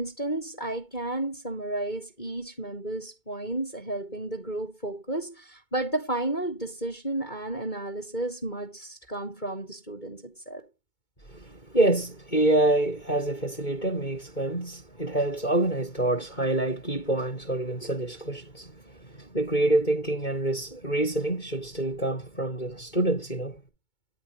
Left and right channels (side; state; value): right; late; 2.2 ms